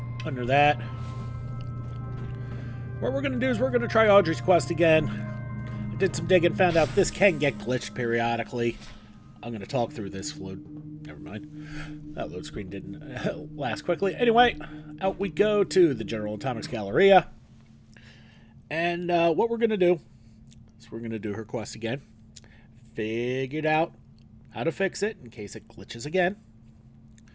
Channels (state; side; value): identical; both; correlation 1.00